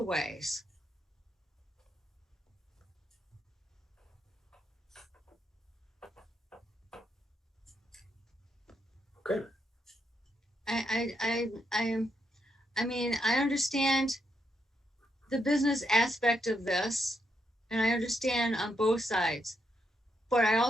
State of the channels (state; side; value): normal; both; correlation 0.80